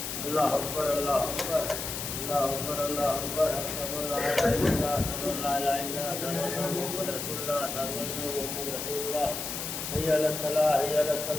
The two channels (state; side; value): noise; left; hiss, 5 dB below the sound